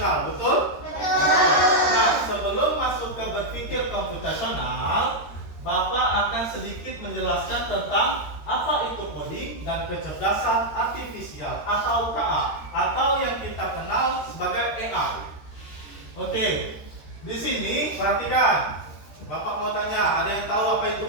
betul? Nah, sebelum masuk ke berpikir komputasional, Bapak akan sedikit menjelaskan tentang apa itu coding dan kecerdasan artifisial atau KA, atau yang kita kenal sebagai AI. Oke, di sini perhatikan. Bapak mau tanya, ada yang tahu apa itu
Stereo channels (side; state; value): right; late; 13 ms